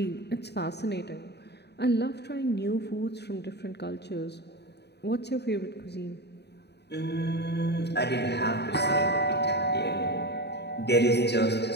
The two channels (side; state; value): right; late; 0.49 ms